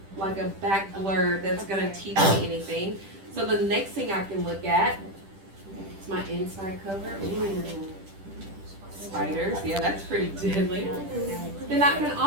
back blurb that's gonna teach me anything. So the next thing I can look at is my inside cover. Ooh. Spiders, yeah, that's pretty deadly. Then I can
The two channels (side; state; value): left; late; 10 ms